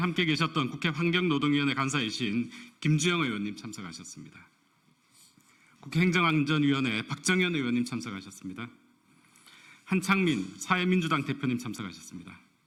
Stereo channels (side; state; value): both; identical; correlation 1.00